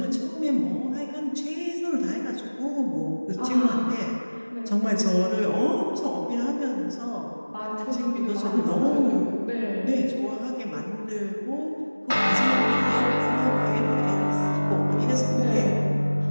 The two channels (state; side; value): inverted; both; correlation -1.00